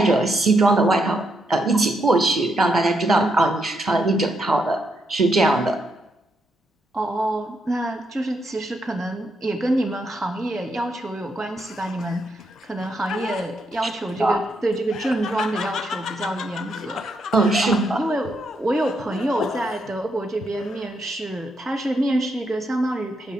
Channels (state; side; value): normal; both; correlation 0.79